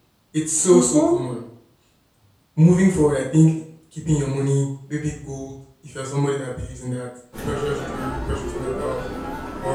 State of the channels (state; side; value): identical; both; correlation 1.00